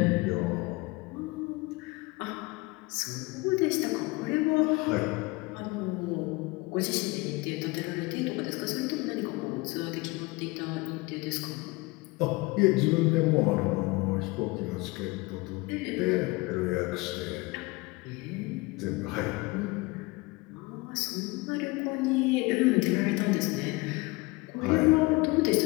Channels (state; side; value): quieter; right; 23.7 dB